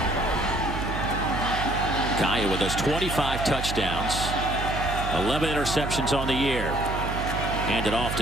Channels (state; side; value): noise; right; hum, 5 dB below the sound